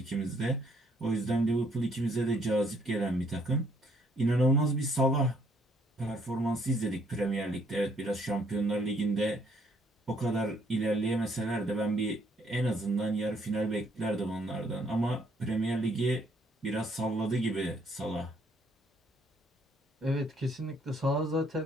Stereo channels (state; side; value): normal; both; correlation 0.67